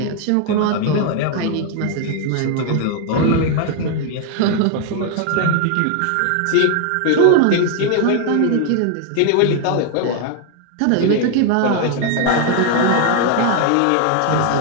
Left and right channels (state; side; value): different; both; correlation 0.00